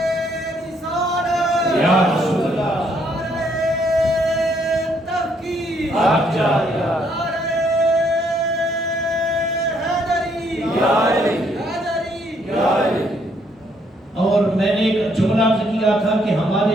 یا رسول اللہ، تحقیق، آپ جائے اور میں نے ایک جملہ عرض کیا تھا کہ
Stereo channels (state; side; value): normal; both; correlation 0.70